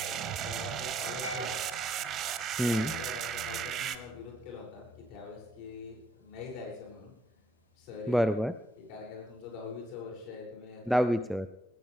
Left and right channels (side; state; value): both; normal; correlation 0.72